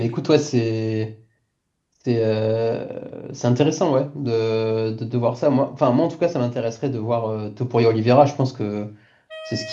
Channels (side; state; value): both; identical; correlation 1.00